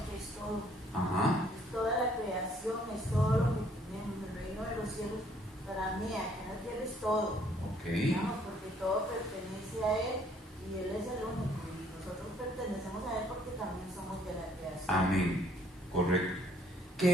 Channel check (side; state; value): both; normal; correlation 0.63